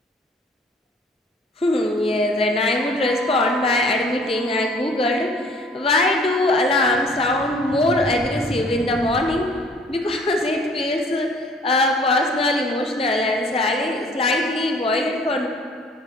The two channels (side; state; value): both; normal; correlation 0.55